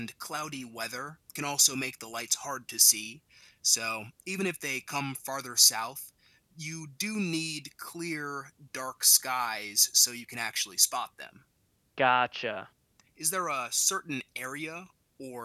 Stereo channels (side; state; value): both; identical; correlation 1.00